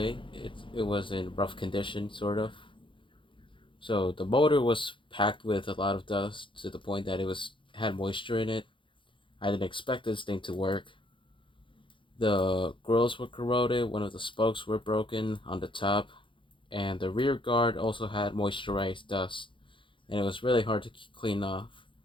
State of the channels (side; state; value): right; late; 0.24 ms